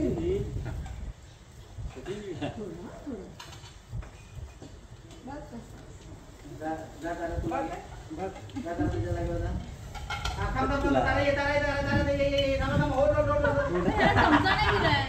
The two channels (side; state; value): both; identical; correlation 1.00